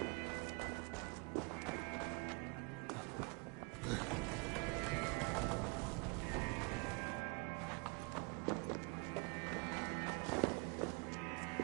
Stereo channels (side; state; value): left; quieter; 31.1 dB